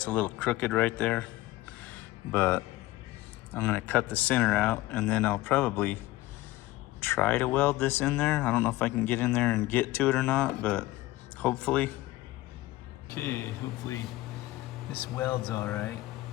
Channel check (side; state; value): right; quieter; 17.6 dB